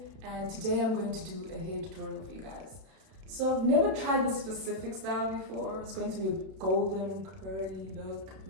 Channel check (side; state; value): left; late; 32 ms